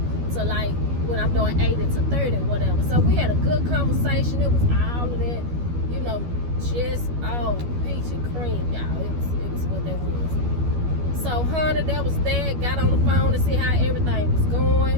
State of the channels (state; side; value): late; left; 12 ms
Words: to, like, when I'm doing 80 to 30 or whatever. So we had a good conversation. It was all of that, you know, just all peach and cream, y'all. It was what that was. So honey, that was that. Got on the phone to see how everything was